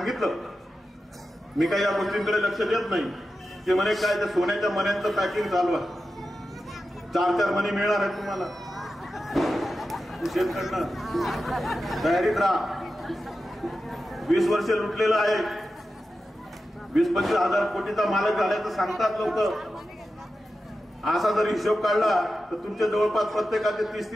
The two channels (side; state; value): both; normal; correlation 0.92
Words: मी काही या गोष्टींकडे लक्ष देत नाही, ते म्हणे काय त्या सोन्याच्या मण्यांचं पॅकिंग चालू आहे, 4-4 मणी मिळणार आहेत तुम्हाला, शेतकऱ्यांना तयारीत राहा। 20 वर्ष लुटलेलं आहे, 20-25 हजार कोटीचा मालक झाल्याचं सांगतात लोक। असा जर हिशोब काढला तर तुमच्या जवळपास प्रत्येकाचे